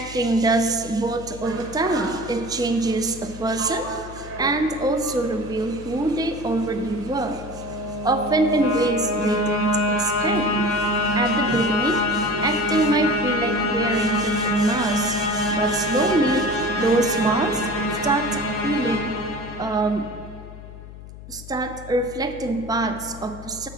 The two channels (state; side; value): noise; left; hum, 15 dB below the sound